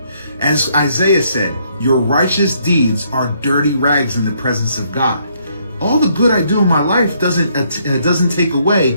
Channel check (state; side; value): inverted; both; correlation -0.70